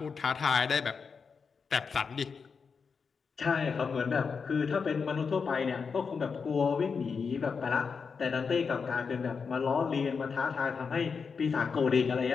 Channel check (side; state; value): right; quieter; 5.5 dB